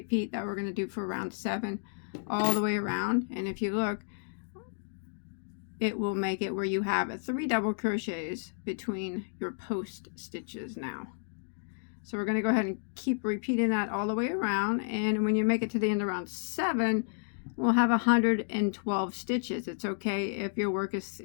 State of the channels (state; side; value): silent; right; digital silence